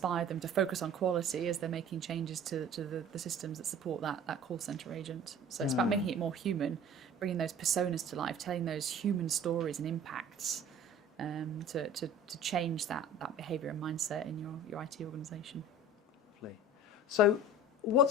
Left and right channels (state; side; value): normal; both; correlation 0.42